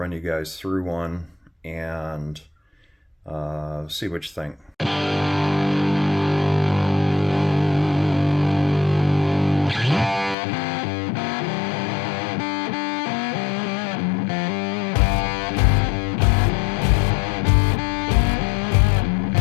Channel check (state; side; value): drops out; right; at 10.4 s